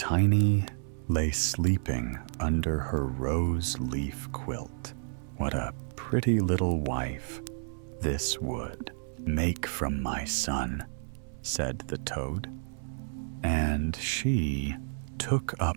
lay sleeping under her rose leaf quilt. What a pretty little wife this would make from my son, said the toad. And she took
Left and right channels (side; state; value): left; silent; 57 dB below the other